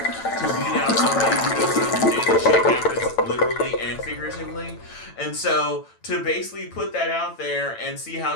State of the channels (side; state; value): right; late; 9.0 ms